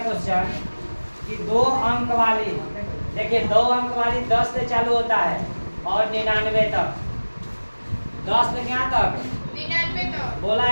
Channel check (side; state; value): both; inverted; correlation -1.00